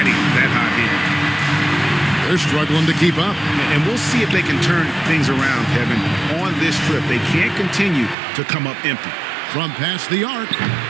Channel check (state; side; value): drops out; left; at 8.2 s